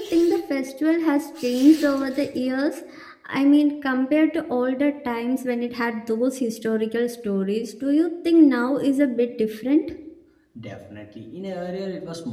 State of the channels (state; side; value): identical; both; correlation 1.00